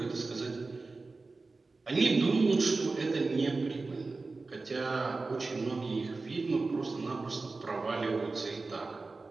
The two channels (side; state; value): left; quieter; 3.7 dB